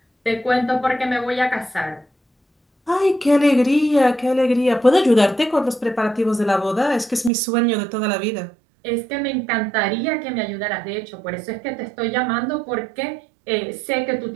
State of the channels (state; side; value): drops out; left; at 7.3 s